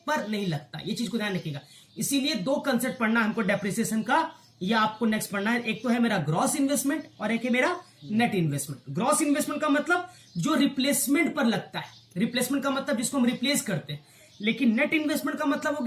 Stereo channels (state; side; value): identical; both; correlation 1.00